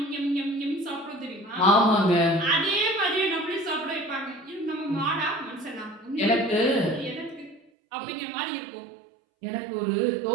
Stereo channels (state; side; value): drops out; left; at 7.6 s